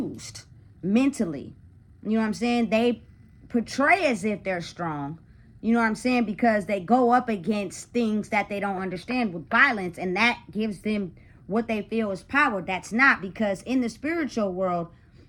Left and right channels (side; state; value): both; identical; correlation 1.00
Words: mentally. You know what I'm saying? They portray as if they're strong. You know what I'm saying? Because they go up against things that they don't understand with violence, and that gives them what they feel is power. That's not, because in the spiritual world,